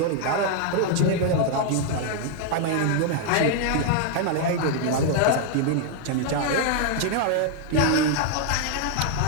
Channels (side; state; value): both; different; correlation 0.00